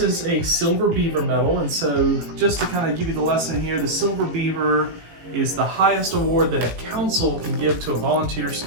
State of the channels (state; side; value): late; left; 18 ms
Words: is a silver beaver medal. And so just to kind of give you the lesson here, the silver beaver is the highest award that a council can give to a volunteer